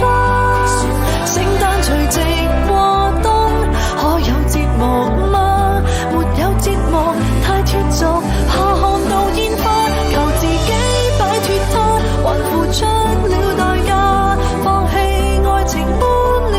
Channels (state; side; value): identical; both; correlation 1.00